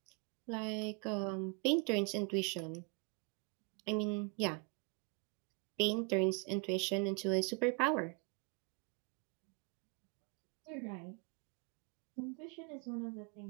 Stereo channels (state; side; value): quieter; left; 32.9 dB